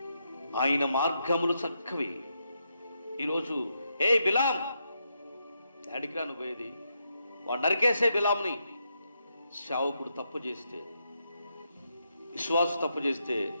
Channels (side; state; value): both; inverted; correlation -0.81